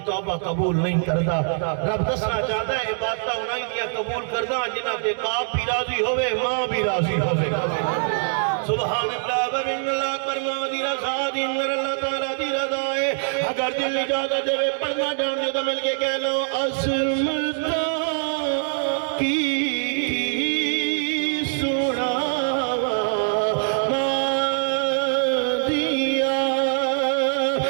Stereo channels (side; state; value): left; silent; 63 dB below the other